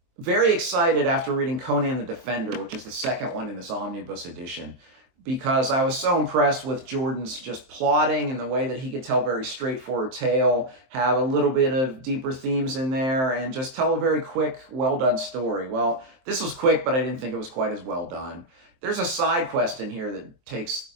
very excited after reading Conan the Defender, which is the second one in this omnibus edition, because I was so impressed with Jordan's just plotting and the way that he could tell a very straightforward tale, have a little bit of deeper themes in there, and just tell a very quick, well-done story. Well, this was quick, but I didn't think it was quite as well done. There's a side quest in here that takes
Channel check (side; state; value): left; late; 23 ms